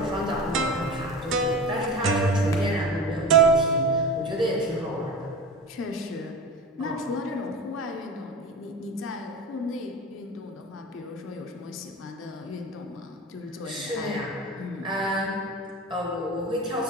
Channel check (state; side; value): normal; both; correlation 0.31